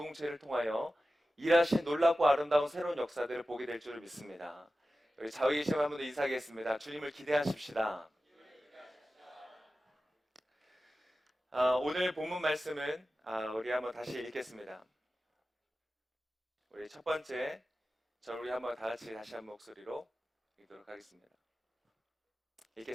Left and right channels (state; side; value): normal; both; correlation 0.94